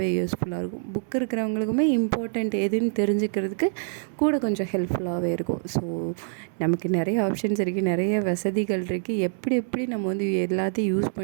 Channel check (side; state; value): left; silent; digital silence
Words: யூஸ்ஃபுல்லாக இருக்கும். புக்கு இருக்கிறவங்களுக்குமே இம்பார்ட்டண்ட் எதுன்னு தெரிஞ்சுக்கிறதுக்கு கூட கொஞ்சம் ஹெல்ப்ஃபுல்லாகவே இருக்கும். ஸோ நமக்கு நிறைய ஆப்ஷன்ஸ் இருக்குது, நிறைய வசதிகள் இருக்குது. எப்படி நம்ம வந்து எல்லாத்தையும் யூஸ்